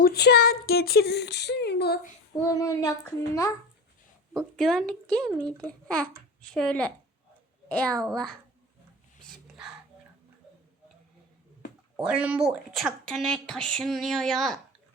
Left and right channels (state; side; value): normal; both; correlation 0.28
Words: getirilsin bunun yakınına. Bu güvenlik değil miydi? Şöyle. Ey Allah. Bismillah. Oğlum bu uçakta ne taşınıyor ya?